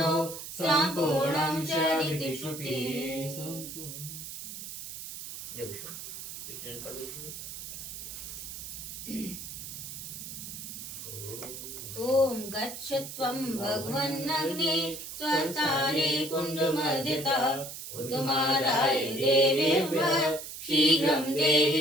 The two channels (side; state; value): right; noise; hiss, 9 dB below the sound